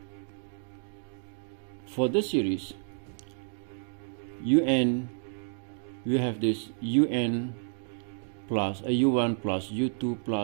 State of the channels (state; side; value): silent; left; digital silence